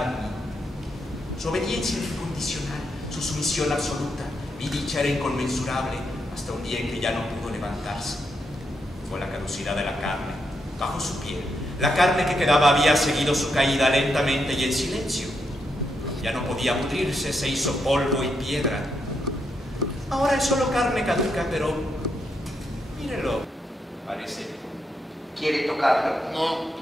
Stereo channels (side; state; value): both; normal; correlation 0.81